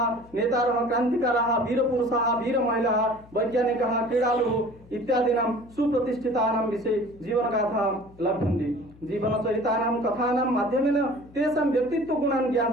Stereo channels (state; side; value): noise; left; hum, 24 dB below the sound